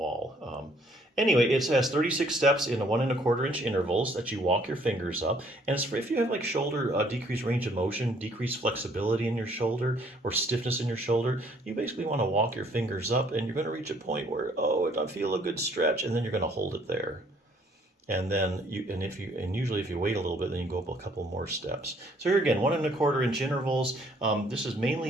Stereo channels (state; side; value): normal; both; correlation 0.62